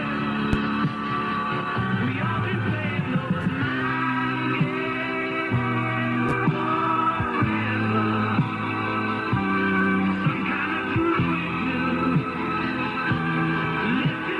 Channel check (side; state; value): both; identical; correlation 1.00